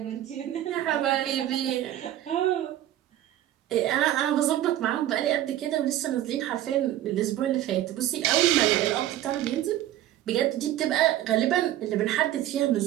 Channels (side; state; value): left; quieter; 13.1 dB